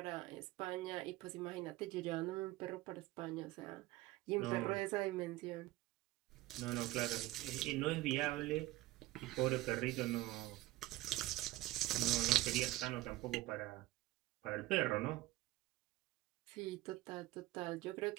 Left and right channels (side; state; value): left; quieter; 17.2 dB